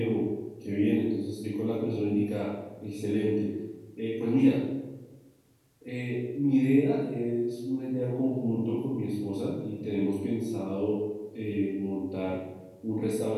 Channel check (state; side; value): identical; both; correlation 1.00